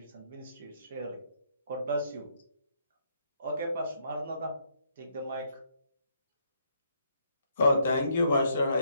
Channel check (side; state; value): both; inverted; correlation -0.73